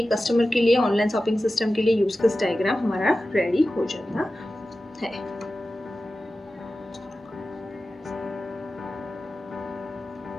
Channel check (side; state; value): both; normal; correlation 0.94